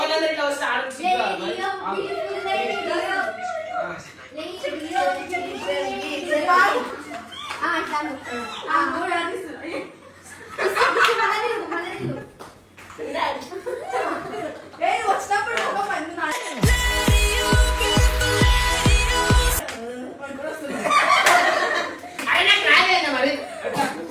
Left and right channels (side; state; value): both; identical; correlation 1.00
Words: ఇట్లా వస్తే ఆడొచ్చు. అయినా రాలేదా మరి?